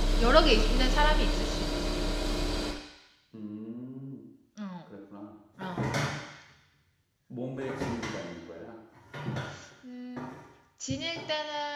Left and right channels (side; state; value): both; identical; correlation 1.00